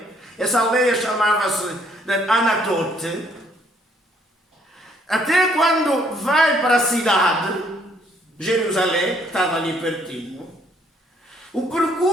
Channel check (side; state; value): both; normal; correlation 0.66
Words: essa aldeia chamava-se Anatote, até quando vai para a cidade, Jerusalém, que estava ali pertinho, o